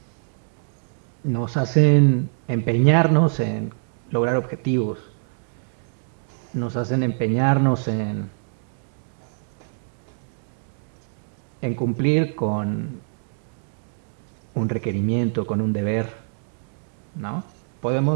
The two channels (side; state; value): left; silent; digital silence